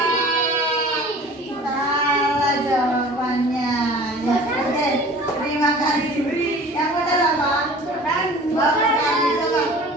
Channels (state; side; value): normal; both; correlation 0.44